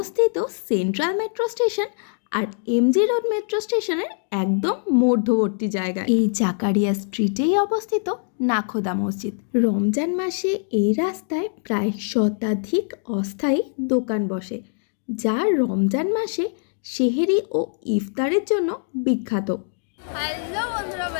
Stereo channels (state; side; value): silent; right; 62 dB below the other